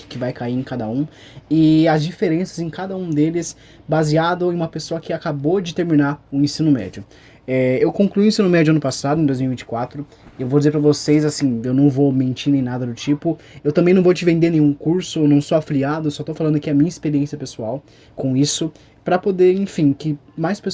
vai cair em cada um e as diferenças em cada um deles, baseado em uma pessoa que acabou de terminar o ensino médio. Eu concluí o ensino médio ano passado, em 2024. Eu vou dizer para vocês, assim, eu não vou mentir nem nada do tipo. Eu também não vou te vender nenhum curso, eu não sou afiliado, só tô falando aqui a minha experiência pessoal com isso, para poder, enfim, que mais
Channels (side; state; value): both; identical; correlation 1.00